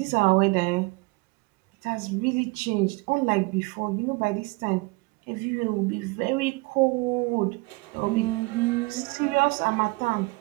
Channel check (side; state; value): left; quieter; 26.3 dB